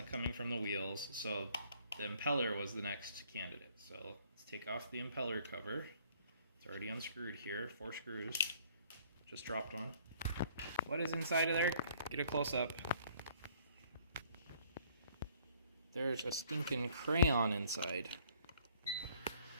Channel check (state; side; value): inverted; both; correlation -0.60